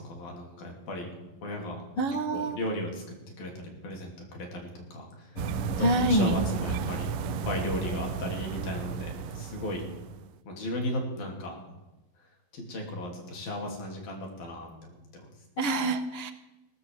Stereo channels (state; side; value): late; right; 11 ms